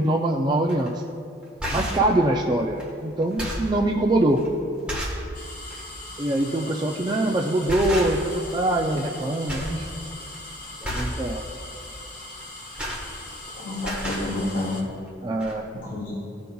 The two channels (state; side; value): normal; both; correlation 0.59